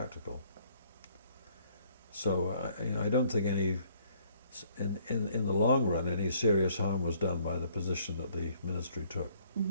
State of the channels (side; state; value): both; inverted; correlation -0.63